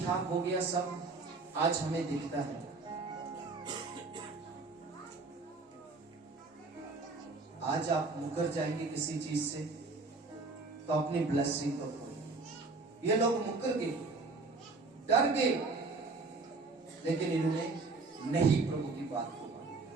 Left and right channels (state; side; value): quieter; left; 3.8 dB